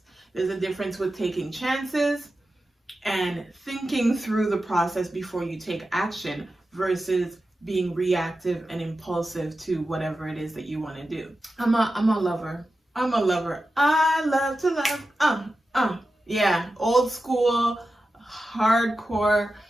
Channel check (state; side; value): normal; both; correlation 0.92